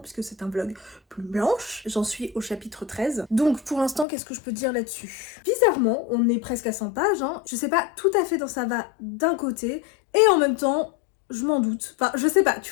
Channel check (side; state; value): right; drops out; at 4.0 s